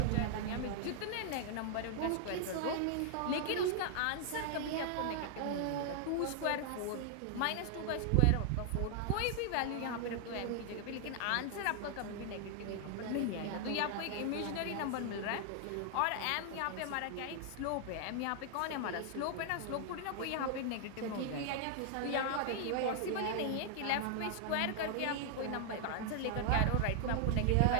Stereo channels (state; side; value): different; both; correlation 0.00